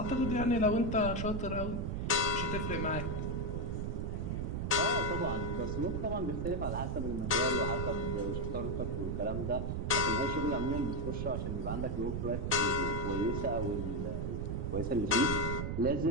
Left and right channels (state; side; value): noise; right; rumble, 1 dB below the sound